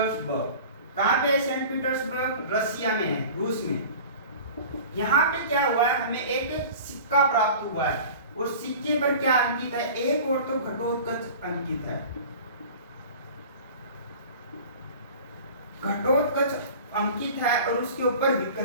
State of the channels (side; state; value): both; inverted; correlation -0.40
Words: कहाँ पे है, सेंट पीटर्सबर्ग रसिया में है, रूस में। यहाँ पे क्या हुआ है, हमें एक सिक्का प्राप्त हुआ है और सिक्के पर क्या अंकित है, एक और तो घटोत्कच अंकित है, घटोत्कच अंकित है और उसके ऊपर